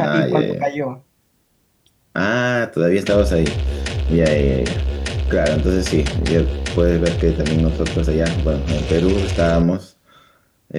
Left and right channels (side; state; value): both; identical; correlation 1.00